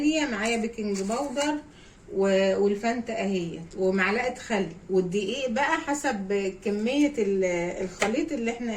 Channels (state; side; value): identical; both; correlation 1.00